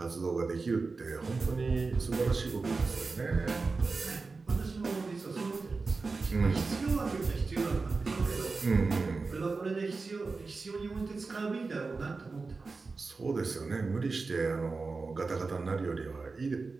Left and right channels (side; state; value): left; quieter; 4.1 dB